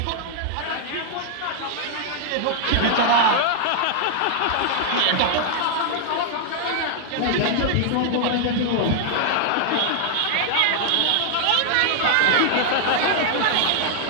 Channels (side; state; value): both; different; correlation 0.00